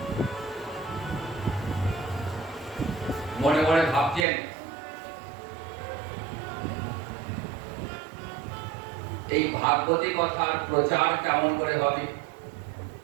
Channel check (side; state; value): left; drops out; at 4.2 s